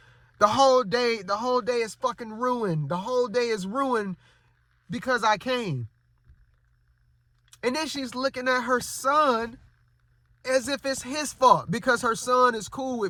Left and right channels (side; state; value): both; identical; correlation 1.00